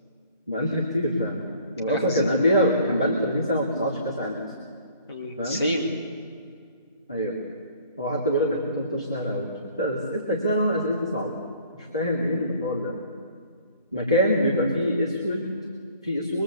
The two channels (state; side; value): inverted; both; correlation -0.54